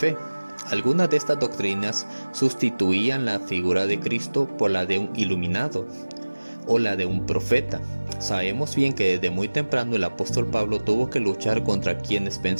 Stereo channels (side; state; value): both; inverted; correlation -1.00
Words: Algunas de estas doctrinas sustituían la figura de Cristo por la de un iluminado o la de un profeta. Sabemos bien que desde muy temprano el apóstol Pablo tuvo que luchar contra quienes